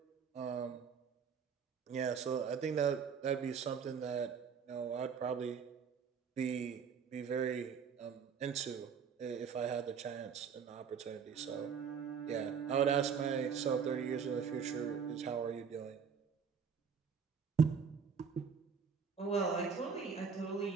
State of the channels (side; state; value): left; quieter; 6.5 dB